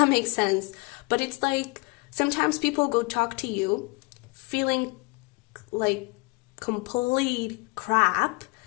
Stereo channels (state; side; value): quieter; right; 28.2 dB